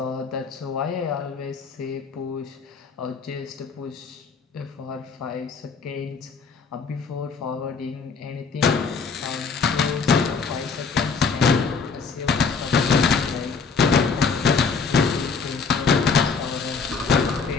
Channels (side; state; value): right; quieter; 5.2 dB